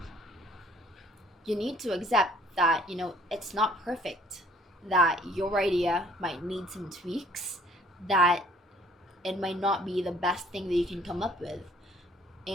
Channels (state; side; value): normal; both; correlation 0.59